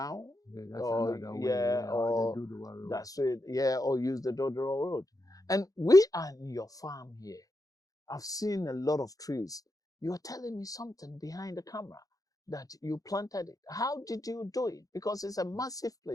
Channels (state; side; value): late; right; 0.17 ms